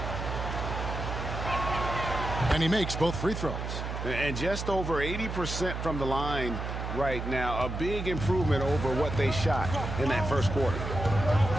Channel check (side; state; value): right; noise; hum, 5 dB below the sound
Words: And he makes both free throws. And just over 80% from the line right now. A big improvement over what they shot in that first quarter.